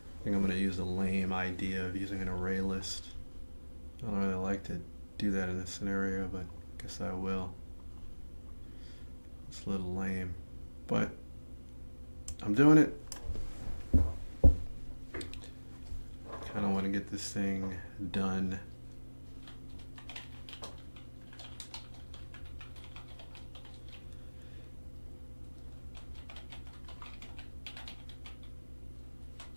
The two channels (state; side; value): inverted; both; correlation -1.00